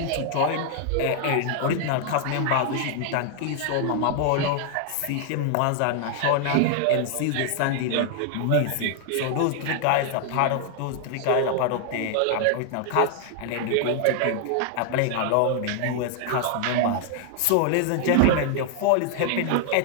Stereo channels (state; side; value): different; both; correlation 0.00